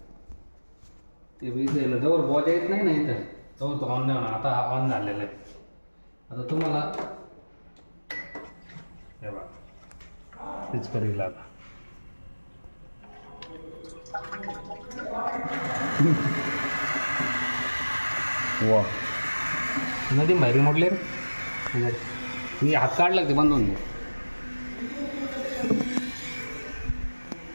ते इथं जवळ बॉजा येत नाही ना इथं जवळ तो ऑन नाही होणार. आता ऑन झालेला आहे. आता तुम्हाला हे बघा तेच करील आता. वा नदी बाहेर मोडले रे. मी हात काढला ते बंद होऊन दे.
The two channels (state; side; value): inverted; both; correlation -1.00